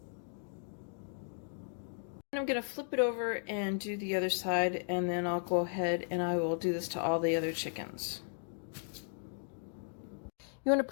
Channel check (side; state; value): right; silent; digital silence